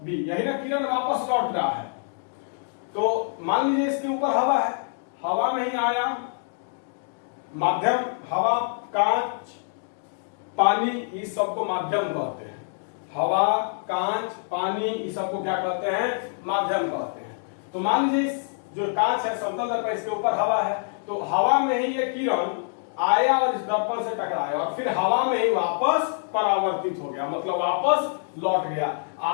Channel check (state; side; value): silent; right; digital silence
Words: यही ना किरण वापस लौट रहा है। तो मान लीजिए इसके ऊपर हवा है, हवा में ही आया, माध्यम, हवा, कांच, पानी, इस सबको माध्यम कहते हैं। हवा, कांच, पानी, इस सबको क्या कहते हैं? माध्यम कहते हैं। तो मान लीजिए जो कांच है समतल दर्पण, इसके ऊपर हवा है, तो हवा में ही ये किरण आया और इस दर्पण से टकराया और फिर हवा में ही वापस परावर्तित हो गया, मतलब वापस लौट गया।